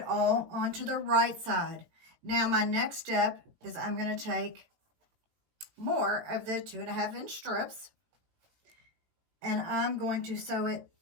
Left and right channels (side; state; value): left; late; 18 ms